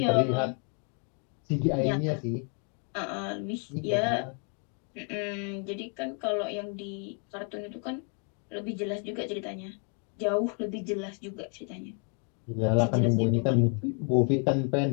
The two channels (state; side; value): quieter; right; 38.4 dB